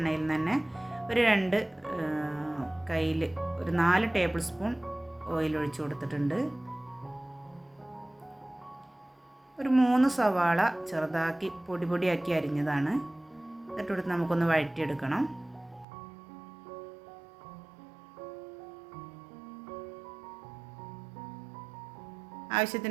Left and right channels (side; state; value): left; drops out; at 15.9 s